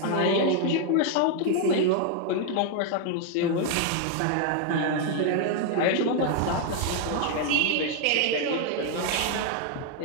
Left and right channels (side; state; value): both; different; correlation 0.00